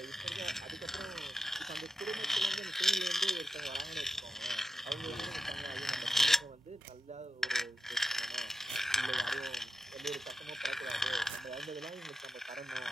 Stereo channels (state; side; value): normal; both; correlation 0.90